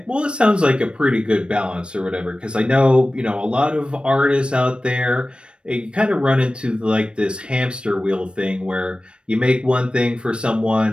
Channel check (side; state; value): left; late; 0.056 ms